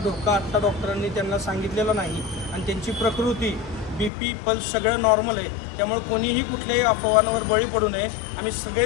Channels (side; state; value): right; drops out; at 4.1 s